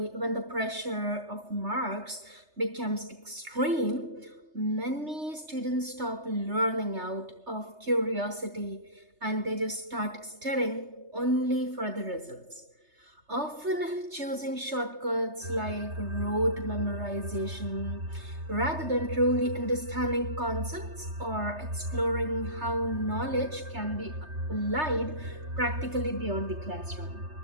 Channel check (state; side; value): late; left; 3.3 ms